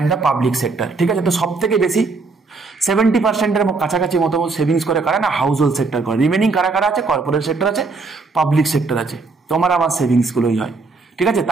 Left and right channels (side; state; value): left; quieter; 4.0 dB